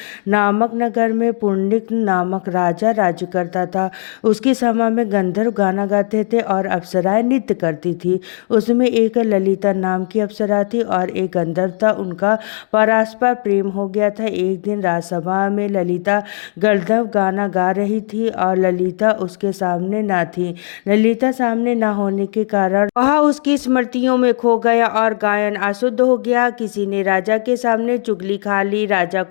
नामक नगर में पुंडलिक नामक राजा राज्य करता था। उसकी सभा में गंधर्व गाना गाते थे और अप्सराएं नृत्य करती थी। उसमें एक ललिता नाम की अप्सरा थी और एक गंधर्व था। उनका परस्पर प्रेम हो गया था। एक दिन राजसभा में ललिता गंधर्व गाना गा रही थी और ललिता उसके सामने न थी। ललिता सामने न होने के कारण वह उसकी स्मृतियों में खो गया और गायन अशुद्ध हो गया। किसी ने राजा के सामने चुगली खा ली। राजा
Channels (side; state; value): right; silent; digital silence